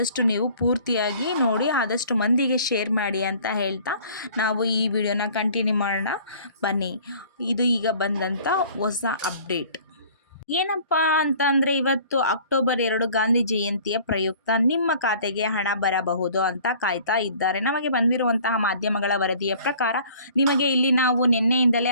ನೀವು ಪೂರ್ತಿಯಾಗಿ ನೋಡಿ, ಆದಷ್ಟು ಮಂದಿಗೆ ಶೇರ್ ಮಾಡಿ ಅಂತ ಹೇಳ್ತಾ ನಾವು ಈ ವಿಡಿಯೋನ ಕಂಟಿನ್ಯೂ ಮಾಡೋಣ. ಬನ್ನಿ, ಇದು ಈಗ ಬಂದಂಥ ಹೊಸ ಅಪ್ಡೇಟ್ ಏನಪ್ಪ ಅಂತ ಅಂದರೆ, ಇವತ್ತು ಅಕ್ಟೋಬರ್ 2 ಗಾಂಧಿ ಜಯಂತಿಯ ಪ್ರಯುಕ್ತ ನಿಮ್ಮ ಖಾತೆಗೆ ಹಣ ಬರಬಹುದು ಅಂತ ಕಾಯ್ತಾ ಇದ್ದಾರೆ. ನಮಗೆ ಬಂದಿರುವಂತಹ ಮಾಧ್ಯಮಗಳ ವರದಿಯ ಪ್ರಕಾರ ನಿಮಗೆ ಇಲ್ಲಿ ನಾವು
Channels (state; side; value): inverted; both; correlation -0.51